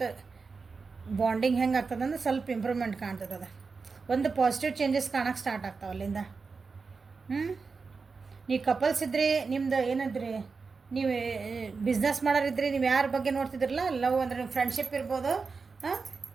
ಬಾಂಡಿಂಗ್ ಹೆಂಗೆ ಆಗ್ತದೆ ಅಂದ್ರೆ ಸ್ವಲ್ಪ ಇಂಪ್ರೂವ್ಮೆಂಟ್ ಕಾಣ್ತದೆ. ಒಂದು ಪಾಸಿಟಿವ್ ಚೇಂಜಸ್ ಕಾಣಕ್ಕೆ ಸ್ಟಾರ್ಟ್ ಆಗ್ತಾವೆ ಅಲ್ಲಿಂದ. ನೀವು ಕಪಲ್ಸ್ ಇದ್ರಿ, ನಿಮ್ದು ಏನಂದ್ರಿ, ನೀವು ಬಿಸ್ನೆಸ್ ಮಾಡೋರಿದ್ರಿ, ನೀವು ಯಾರ ಬಗ್ಗೆ ನೋಡ್ತಿದ್ರಲ್ಲ, ಲವ್ ಅಂದರೆ ನಿಮ್ಮ ಫ್ರೆಂಡ್ಶಿಪ್ ಇರ್ಬೋದು.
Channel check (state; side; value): quieter; left; 4.7 dB